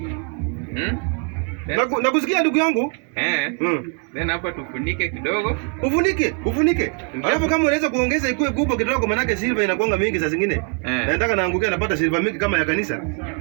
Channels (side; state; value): left; quieter; 37.0 dB